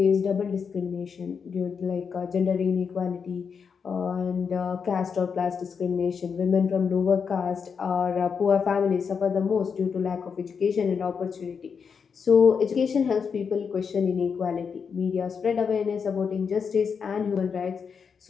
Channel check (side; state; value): right; quieter; 6.2 dB